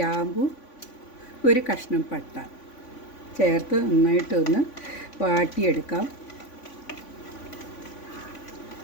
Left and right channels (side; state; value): right; late; 3.5 ms